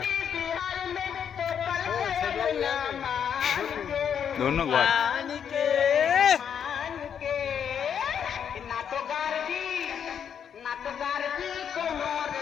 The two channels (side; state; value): right; quieter; 8.1 dB